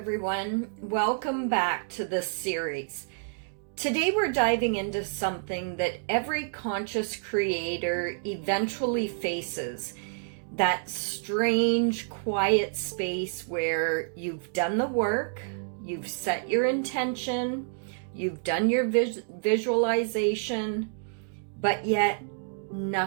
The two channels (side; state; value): left; silent; digital silence